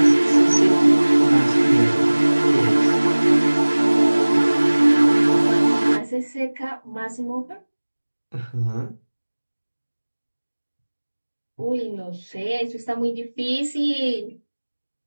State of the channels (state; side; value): inverted; both; correlation -1.00